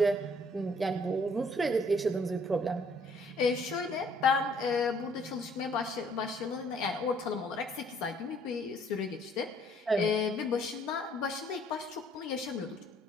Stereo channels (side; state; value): both; normal; correlation 0.62